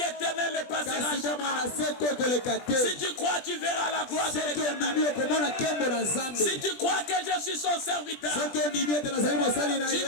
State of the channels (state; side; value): late; right; 20 ms